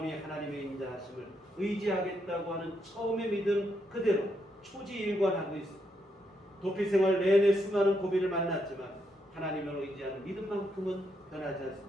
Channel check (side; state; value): both; normal; correlation 0.78